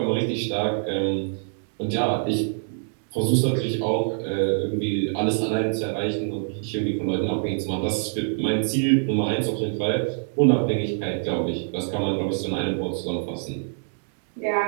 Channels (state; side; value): silent; left; digital silence